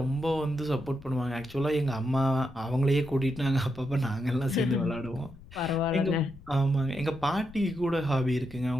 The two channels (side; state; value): left; noise; rumble, 19 dB below the sound